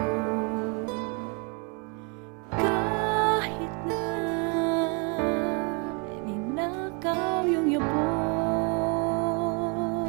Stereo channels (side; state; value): left; quieter; 34.6 dB